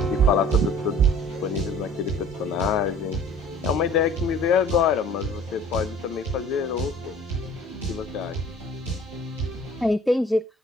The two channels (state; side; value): normal; both; correlation 0.49